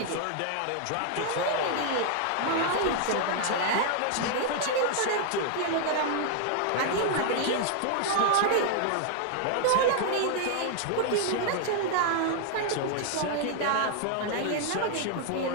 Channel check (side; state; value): both; different; correlation 0.00